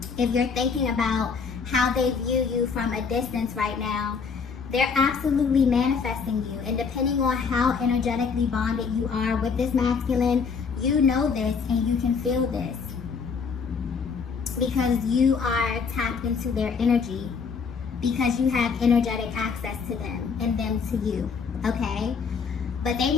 If you're thinking about how they view you from a distance right now, they're absolutely manifesting you. And depending on how energetically bonded you are with this masculine, you know this and you can feel this because you are tapped into their energy, because you have energetic access to them and them to you, okay? But they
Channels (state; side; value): quieter; right; 5.6 dB